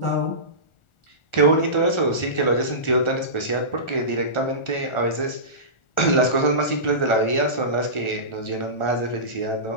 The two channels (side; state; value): right; late; 1.4 ms